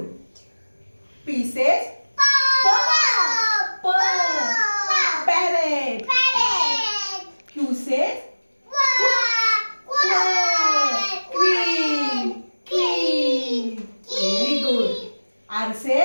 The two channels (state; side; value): inverted; both; correlation -1.00